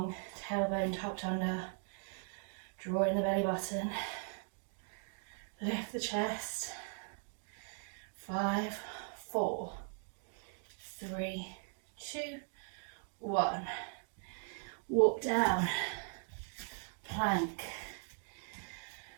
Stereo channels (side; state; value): left; silent; 52 dB below the other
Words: tailbone tucked under. Draw in the belly button. Lift the chest. 5, 4, 3, 2, 1. Walk down. Plank.